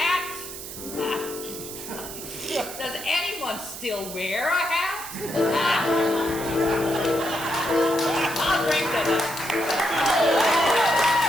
Does anyone still wear a hat? I'll drink to them.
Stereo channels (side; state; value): right; noise; hiss, 10 dB below the sound